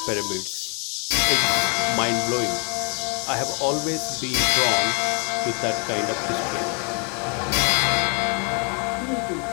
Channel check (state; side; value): quieter; right; 36.0 dB